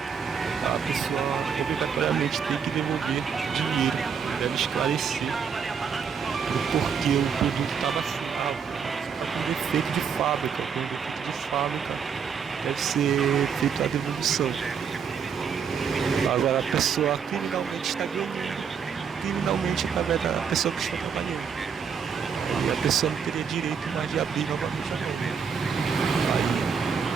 A pessoa obrigatoriamente tem que devolver dinheiro, deve esclarecer o porquê o produto estava assim, está com defeito de fábrica, deve ser feita a devolução. Agora a pessoa criminalmente está ganhando, através da pessoa que está trabalhando. E a pessoa não teria direito mais de abrir novamente a mão.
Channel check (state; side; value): quieter; left; 6.7 dB